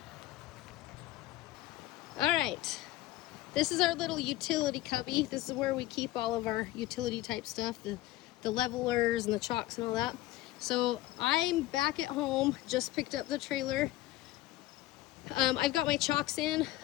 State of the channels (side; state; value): right; quieter; 16.5 dB